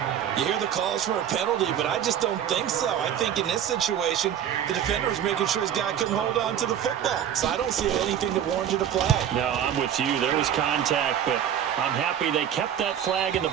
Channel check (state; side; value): quieter; left; 9.7 dB